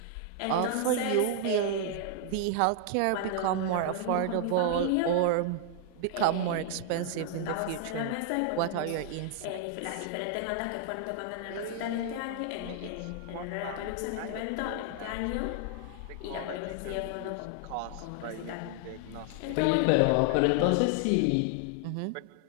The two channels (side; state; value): both; different; correlation 0.00